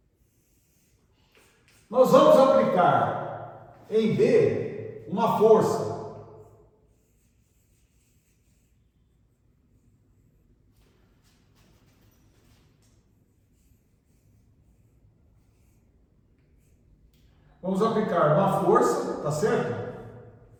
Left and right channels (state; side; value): identical; both; correlation 1.00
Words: Nós vamos aplicar em B uma força. Vamos aplicar uma força, tá certo?